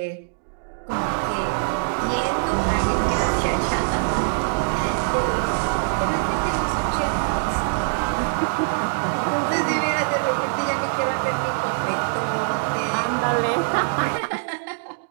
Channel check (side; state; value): left; silent; digital silence